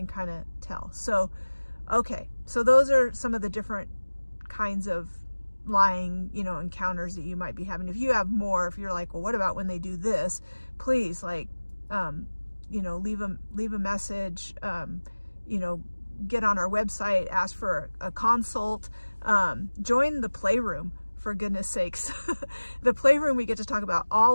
kind of tell. So okay, so those are some of the different kinds of lying encounters that you might be having. If you have more, if you're like, well, what about when they do this, please, like, leave a message, get on our website, ask for a consult, join the Playroom, for goodness sakes. The Playroom, we get to talk about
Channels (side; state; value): both; inverted; correlation -1.00